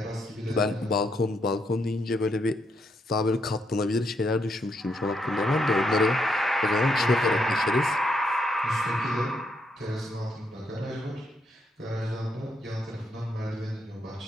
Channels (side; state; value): both; normal; correlation 0.77